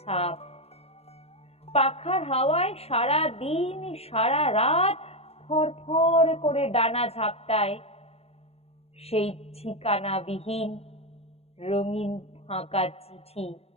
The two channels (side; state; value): right; late; 0.29 ms